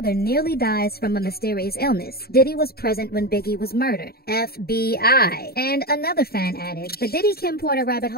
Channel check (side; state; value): right; late; 0.45 ms